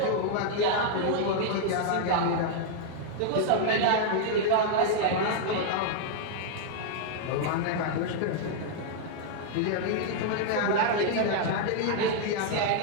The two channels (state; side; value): different; both; correlation -0.01